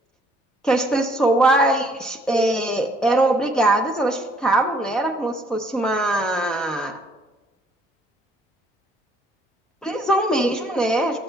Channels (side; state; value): both; normal; correlation 0.63